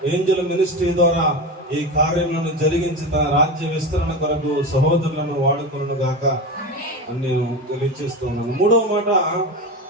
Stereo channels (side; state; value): both; normal; correlation 0.23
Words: ఏంజల్ మినిస్ట్రీ ద్వారా ఈ కార్యములను జరిగించి తన రాజ్య విస్తరణ కొరకు సహోదరులను వాడుకొనును గాక అని నేను తెలియజేస్తున్నాను. మూడవ మాట,